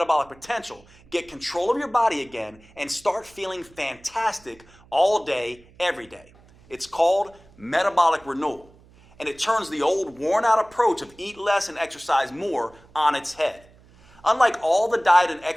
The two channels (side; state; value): right; noise; hum, 27 dB below the sound